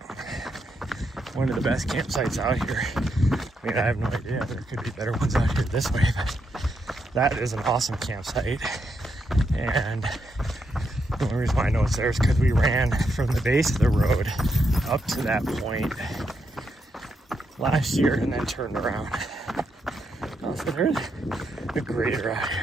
one of the best campsites out here. I mean, I have no idea. There could be better ones out here this way, but that is an awesome campsite. And the only reason why I know it's there is because we ran from the base of the road up to that point last year and then turned around. Oh, so there's a grader out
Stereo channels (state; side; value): normal; both; correlation 0.81